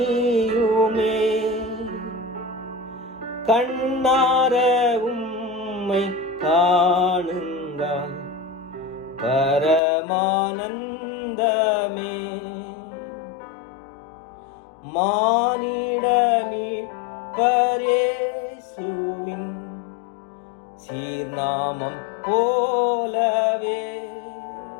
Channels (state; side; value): drops out; right; at 9.8 s